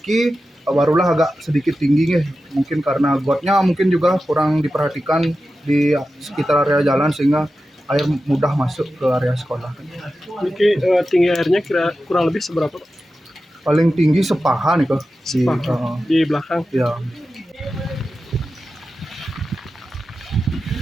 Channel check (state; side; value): normal; both; correlation 0.92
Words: barulah agak sedikit tinggi mungkin karena gotnya mungkin juga kurang diperhatikan di sekitar area jalan sehingga air mudah masuk ke area sekolah. Niki tinggi airnya kurang lebih seberapa, Pak? Paling tinggi sepaha nih kok di belakang. Ya.